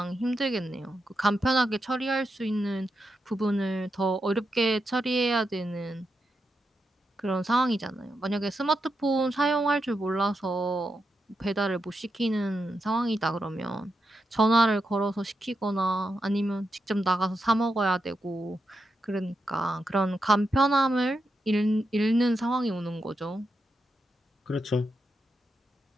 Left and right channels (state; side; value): normal; both; correlation 0.86